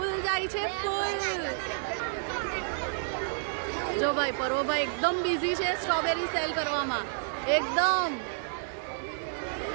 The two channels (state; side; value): silent; left; 58 dB below the other